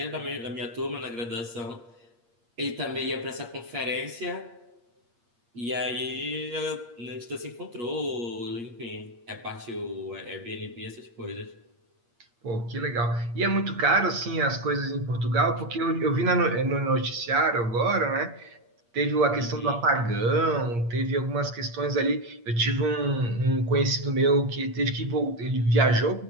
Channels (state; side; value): late; left; 8.5 ms